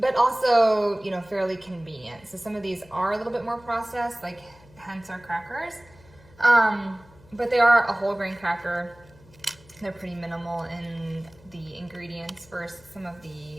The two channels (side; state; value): left; noise; hum, 25 dB below the sound